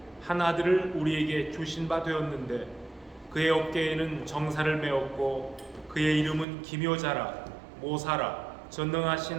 한 아들을 우리에게 주신 바 되었는데 그의 어깨에는 정사를 메었고 그의 이름은 기묘자라, 모사라,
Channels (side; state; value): left; drops out; at 6.5 s